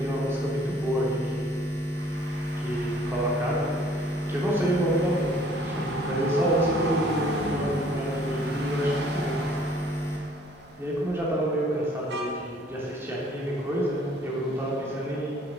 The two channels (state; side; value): normal; both; correlation 0.58